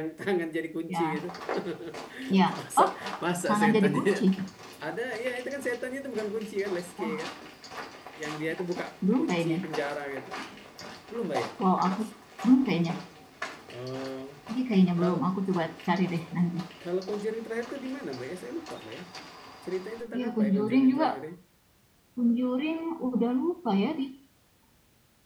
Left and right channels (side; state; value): both; identical; correlation 1.00